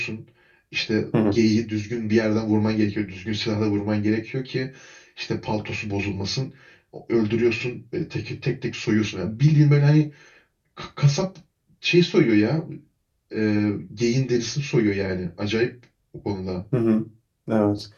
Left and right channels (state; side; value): identical; both; correlation 1.00